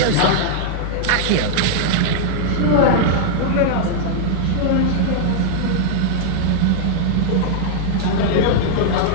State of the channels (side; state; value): both; different; correlation -0.01